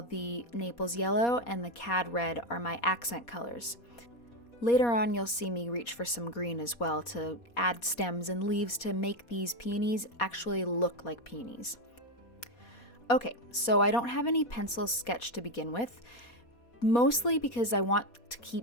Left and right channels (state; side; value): late; right; 4.2 ms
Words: Naples yellow and the cad red are my accent colors. Later on, you'll see me reach for some green as well to add stems and leaves to make these peonies actually look like peonies. Okay, so I don't have any pencil sketch to begin with, mostly because I want to